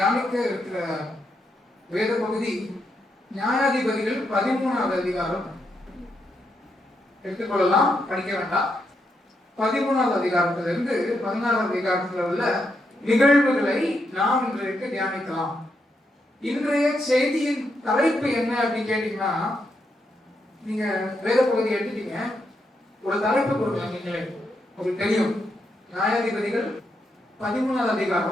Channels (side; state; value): both; normal; correlation 0.81